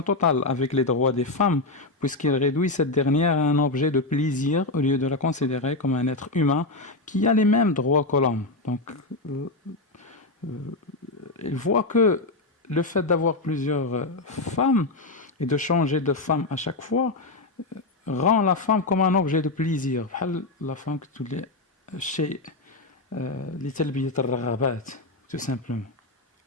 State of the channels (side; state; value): right; quieter; 3.1 dB